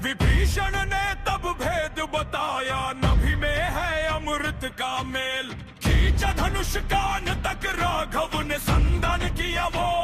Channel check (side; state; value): both; identical; correlation 1.00